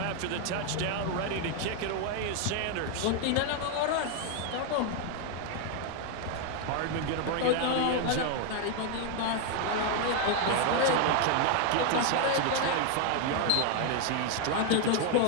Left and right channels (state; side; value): different; both; correlation 0.01